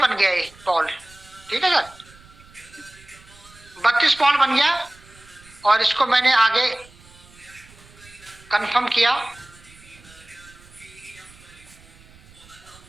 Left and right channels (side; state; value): right; noise; rumble, 24 dB below the sound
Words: गया ये पॉल, ठीक है सर। 32 पॉल बन गया और इसको मैंने आगे कंफर्म किया।